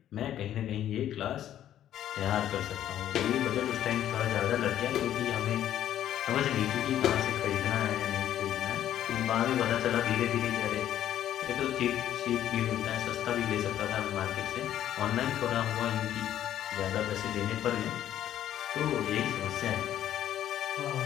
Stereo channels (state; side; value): quieter; right; 11.4 dB